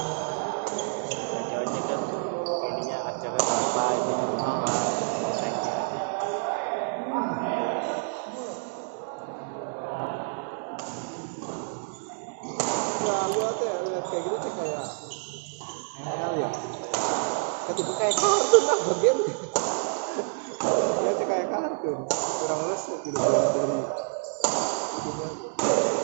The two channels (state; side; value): silent; left; digital silence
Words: ojek kan ininya harganya berapa ini berapa naiknya. Wah, gua tuh ya lihat kayak gitu tuh kayak ML ya. Ketika kayak kartun lah game. Ya tuh kayak kartun. Kurang lulus gitu